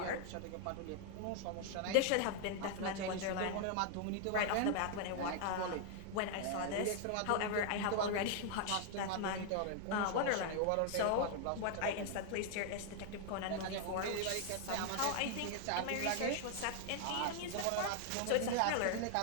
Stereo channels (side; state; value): both; different; correlation 0.00